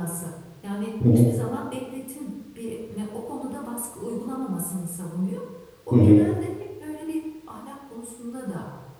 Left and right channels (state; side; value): identical; both; correlation 1.00